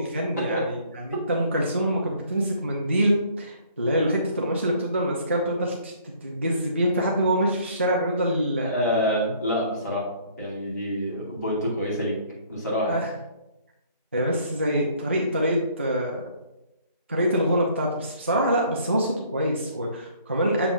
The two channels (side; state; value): both; inverted; correlation -0.58